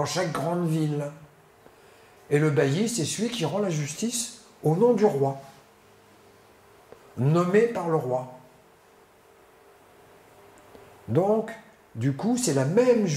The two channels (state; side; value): identical; both; correlation 1.00